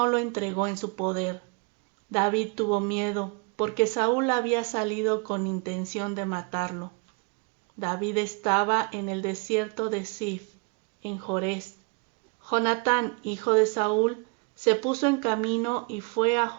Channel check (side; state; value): left; quieter; 33.0 dB